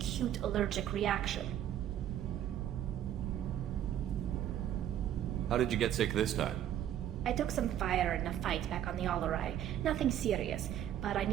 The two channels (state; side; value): quieter; left; 11.0 dB